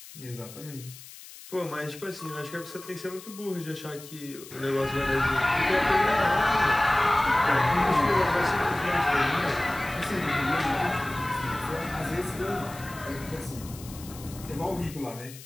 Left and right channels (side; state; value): left; noise; hiss, 17 dB below the sound